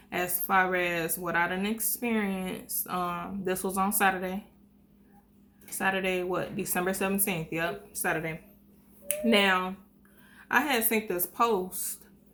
as far as what I done experienced. This was on Saturday. Saturday, what? December 17th. Yep, Saturday. Now, I had seen this post,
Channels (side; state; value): both; identical; correlation 1.00